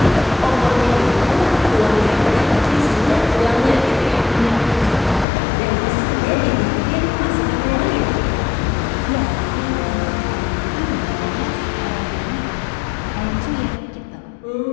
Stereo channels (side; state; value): right; drops out; at 5.2 s